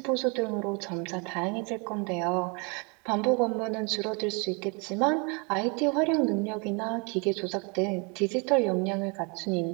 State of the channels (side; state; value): left; quieter; 32.7 dB